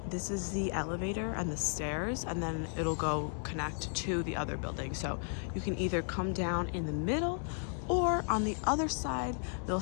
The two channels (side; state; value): right; silent; 55 dB below the other